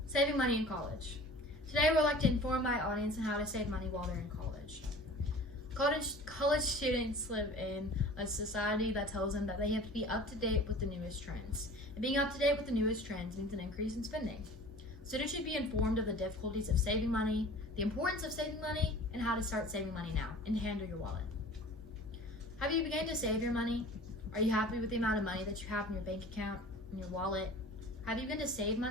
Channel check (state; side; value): normal; both; correlation 0.43